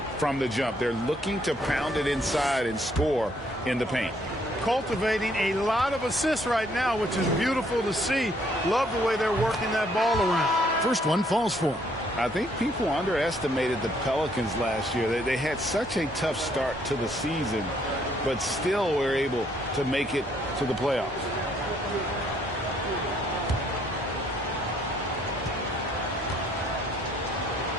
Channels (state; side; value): normal; both; correlation 0.67